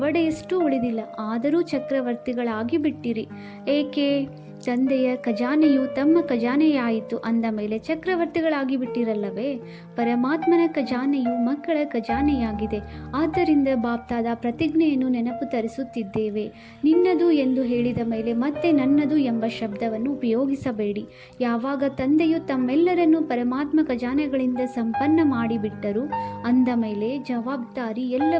ಉಳಿದಿಲ್ಲ, ಆದರೂ ಚಕ್ರವರ್ತಿಗಳಾಗಿ ಬಿಟ್ಟಿರಿ. ಏಕೆ? ತಂದೆಯ ಖಜಾನೆಯು ತಮ್ಮ ಖಜಾನೆಯಾಯಿತು ಅಂದ ಮೇಲೆ ಚಕ್ರವರ್ತಿಗಳಾಗಿ ಬಿಟ್ಟಿರಲ್ಲವೇ? ಪರಮಾತ್ಮನ ಖಜಾನೆಯು ಮಕ್ಕಳ ಖಜಾನೆಯಾಗಿದೆ. ಆದ್ದರಿಂದ ಬಾಪ್ತಾದ ಪ್ರತಿಜ್ಞೆಯನ್ನು ನೆನಪು ತರಿಸುತ್ತಿದ್ದೇವೆ. ನಿನ್ನದು ಎಂದು ಹೇಳಿದ ಮೇಲೆ ಮತ್ತೆ ನನ್ನದು ಎಂಬ ಶಬ್ದವನ್ನು ಉಪಯೋಗಿಸಬೇಡಿ. ಯಾವಾಗ ತಂದೆಯು ತಮ್ಮೆಲ್ಲರನ್ನೂ ಪರಮಾತ್ಮ ಖಜಾನೆಗಳಿಂದ ಸಂಪನ್ನ ಮಾಡಿಬಿಟ್ಟರು ಅಂದ ಮೇಲೆ ಜವಾಬ್ದಾರಿ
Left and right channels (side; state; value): both; identical; correlation 1.00